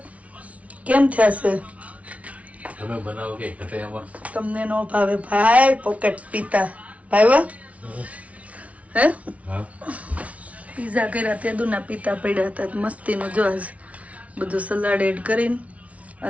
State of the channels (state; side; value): late; left; 0.066 ms